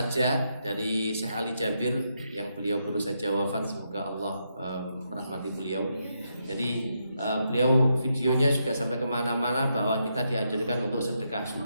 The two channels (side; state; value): both; inverted; correlation -0.81